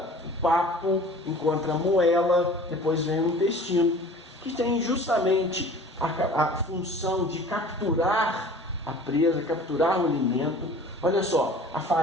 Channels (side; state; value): both; normal; correlation 0.45